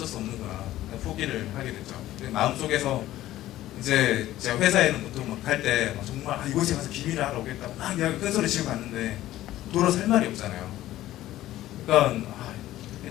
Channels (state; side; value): quieter; right; 14.5 dB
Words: 수 없는구나. 포기를 하게 됐죠. 마음속에서 이제 제가 회사에는 보통 막 갈 때 정말 이곳에 가서 비밀을 하러 오겠다고 막 이야기 큰 소리 치고 갔는데 돌아서 할 말이 없잖아요. 그러니까